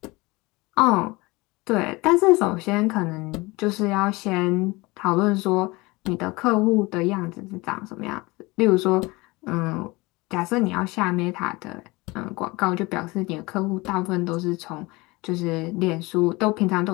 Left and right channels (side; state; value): right; quieter; 23.3 dB